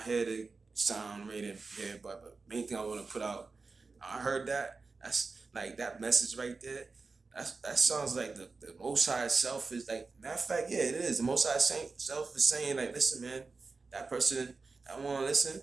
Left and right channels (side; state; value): left; quieter; 4.2 dB